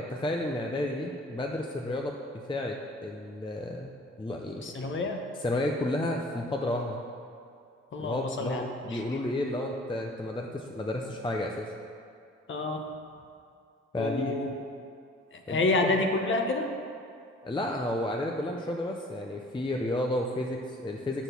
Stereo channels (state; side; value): normal; both; correlation 0.49